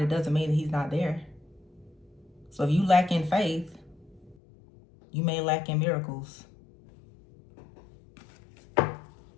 it doesn't mean that he's not there. So if you lack in faith, you may lack in miracles.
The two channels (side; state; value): right; drops out; at 4.4 s